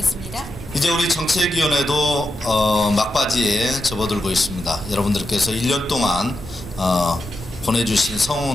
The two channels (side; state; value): both; normal; correlation 0.87